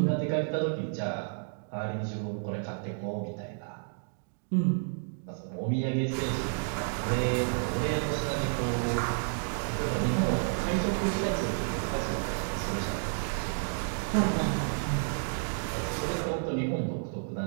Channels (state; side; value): silent; left; 57 dB below the other